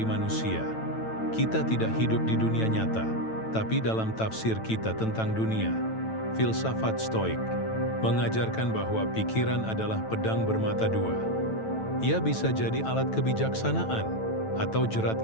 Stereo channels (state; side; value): late; right; 9.1 ms